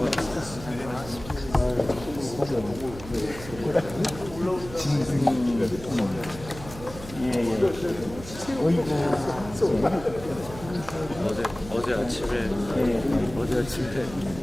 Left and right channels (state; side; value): noise; right; hum, 14 dB below the sound